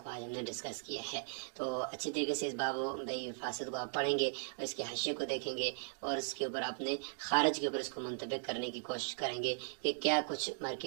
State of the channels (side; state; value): left; silent; digital silence